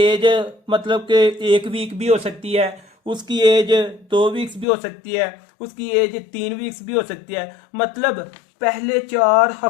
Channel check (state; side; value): drops out; right; at 4.7 s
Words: मतलब कि 1 वीक भी हो सकती है, उसकी एज 2 वीक्स भी हो सकती है, उसकी एज 3 वीक्स भी हो सकती है, मतलब पहले 4